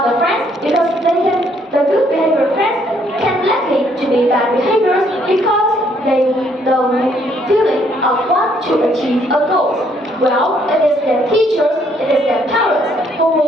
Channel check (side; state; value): both; normal; correlation 0.68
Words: the friends because the good behavior friends can likely to be bad behaviors because the feeling of want to achieve a goal. Well, it is their teachers, it is their parents who